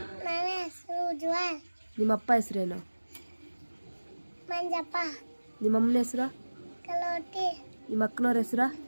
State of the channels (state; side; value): inverted; both; correlation -1.00